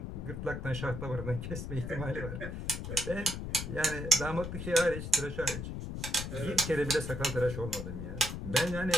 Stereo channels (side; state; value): left; noise; rumble, 6 dB below the sound